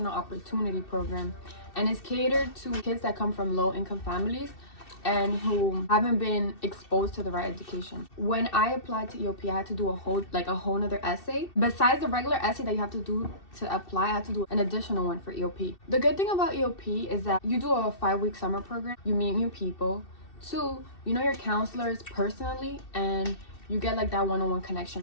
Opportunity Program, and it's catered to kids that come from low-income families and who haven't been exposed to the right education. When I applied to EOP, I had to do a whole nother essay. Besides the regular essay that you have to do to apply, I had to do an additional one for EOP. The good thing about EOP is that you do a 5-week summer program, you meet new people. 2, you know your counselors personally, and you get like that one-on-one connection.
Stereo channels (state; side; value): late; right; 2.7 ms